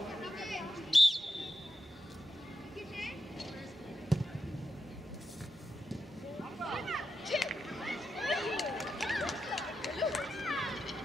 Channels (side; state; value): both; normal; correlation 0.86